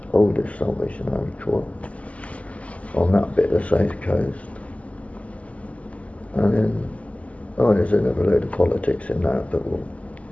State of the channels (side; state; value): right; late; 0.067 ms